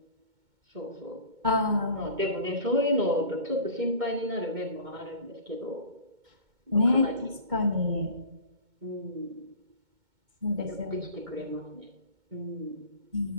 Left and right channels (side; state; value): left; late; 2.2 ms